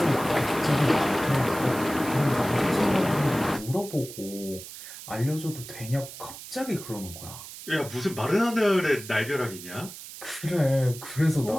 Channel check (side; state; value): right; noise; hiss, 13 dB below the sound